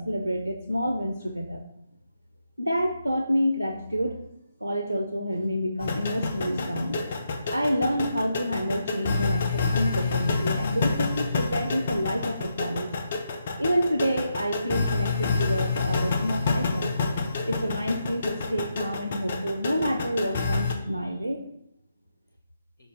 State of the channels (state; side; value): inverted; both; correlation -0.82